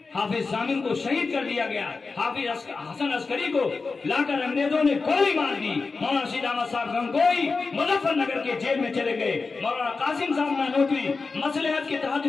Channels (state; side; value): quieter; right; 4.3 dB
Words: حافظ ضامن کو شہید کر دیا گیا۔ حافظ حسن عسکری کو لا کر انگریزوں نے گولی مار دی۔ مولانا رشید احمد صاحب گنگوئی مظفر نگر کے جیل میں چلے گئے۔ مولانا قاسم صاحب نانوتوی مصلحت کے تحت